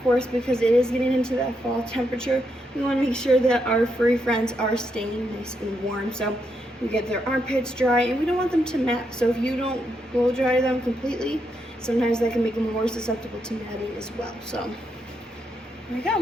course, because it is getting into that fall temperature, we wanna make sure that our furry friends are staying nice and warm. So we get their armpits dry, and we don't want them to mat. So if you don't blow dry them completely, sometimes that can make them more susceptible to matting as well. So there we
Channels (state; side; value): normal; both; correlation 0.81